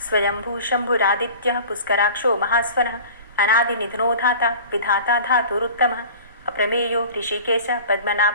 स्वयंभू शंभुरादित्यः पुष्कराक्षो महास्वनः अनादिनिधनो धाता विधाता धातुरुत्तमः अप्रमेयो ऋषिकेश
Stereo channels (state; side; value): inverted; both; correlation -0.40